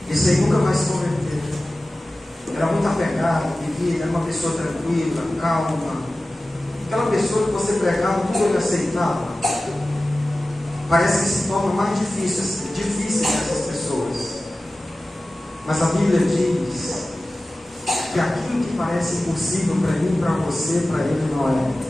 esse aí nunca vai se converter. Era muito apegado, vivia, era uma pessoa tranquila, calma, aquela pessoa que você pregava, tudo ele aceitava. Parece que se torna mais difícil essas pessoas. Mas a Bíblia diz que aquilo que parece impossível para mim, para você, para ele não é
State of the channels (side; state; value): both; normal; correlation 0.96